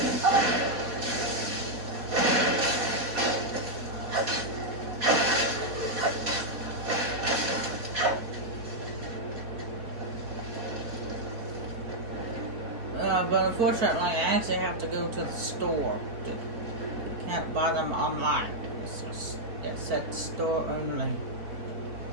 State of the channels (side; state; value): left; late; 4.0 ms